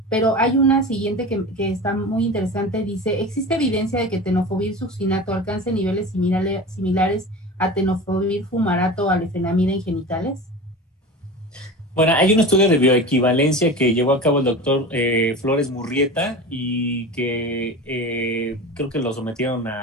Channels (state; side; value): normal; both; correlation 0.32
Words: pero hay una siguiente que está muy interesante, dice, ¿existe evidencia de que tenofovir succinato alcance niveles similares a tenofovir fumarato o a lefenamida en genitales? Bueno, hay un estudio de bioequivalencia que llevó a cabo el doctor Flores Murrieta y que creo que lo sometieron